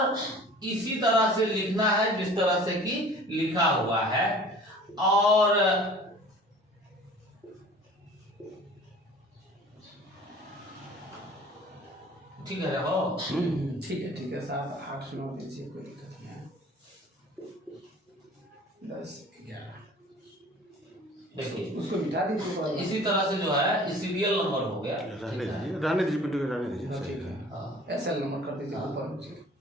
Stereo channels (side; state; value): both; normal; correlation 0.47